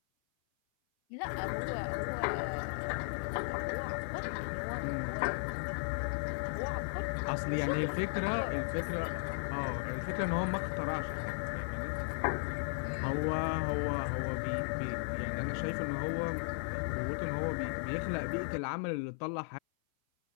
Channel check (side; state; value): right; silent; 54 dB below the other